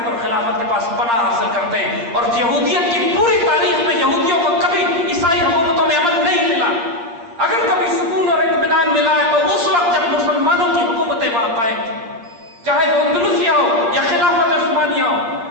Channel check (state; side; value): late; left; 8.7 ms